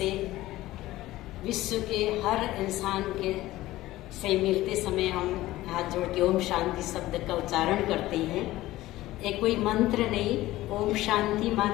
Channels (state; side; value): quieter; right; 16.6 dB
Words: विश्व के हर इंसान के से मिलते समय हम हाथ जोड़ के ओम शांति शब्द का उच्चारण करते हैं। एक कोई मंत्र नहीं, ओम शांति